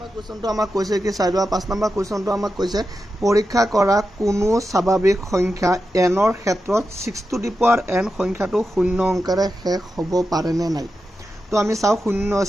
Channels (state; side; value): normal; both; correlation 0.90